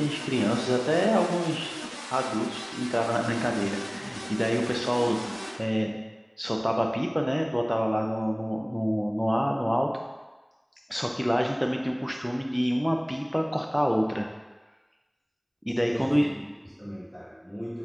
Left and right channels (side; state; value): both; identical; correlation 1.00